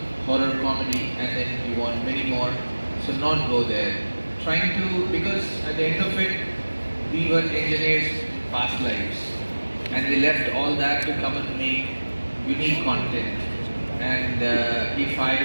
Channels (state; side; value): inverted; both; correlation -1.00